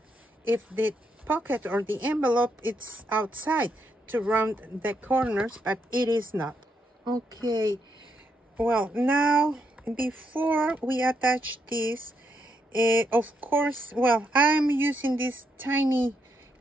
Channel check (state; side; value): normal; both; correlation 0.79